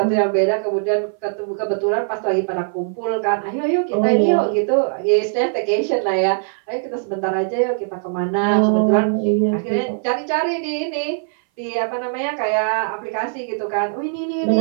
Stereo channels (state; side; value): silent; left; 58 dB below the other